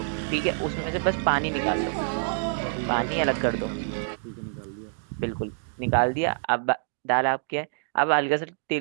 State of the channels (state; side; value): silent; left; digital silence